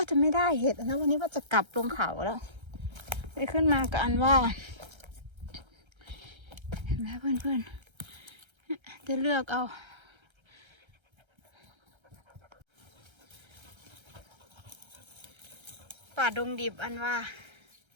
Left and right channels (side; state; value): left; late; 1.3 ms